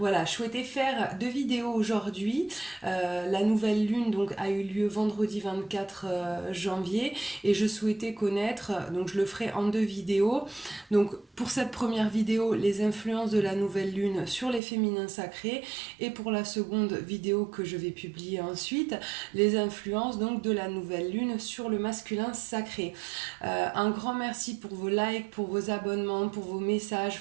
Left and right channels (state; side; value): drops out; left; at 14.6 s